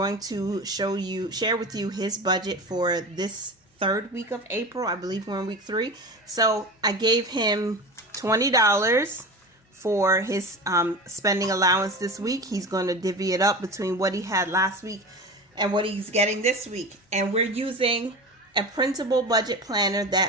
to share with you his budget for this third week of April. I believe we're in week 3. So I gave him $20 for his spending allowance this week. He's going to divvy it up between what he had last week and what he's getting this week. And we're using a printable budget planner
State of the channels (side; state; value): both; normal; correlation 0.30